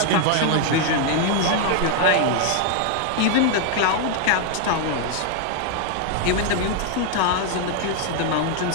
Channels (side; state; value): both; different; correlation 0.00